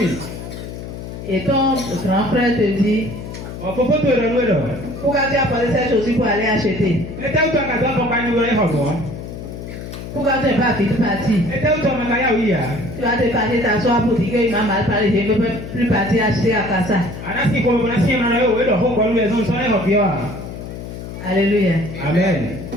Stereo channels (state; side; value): noise; left; hum, 10 dB below the sound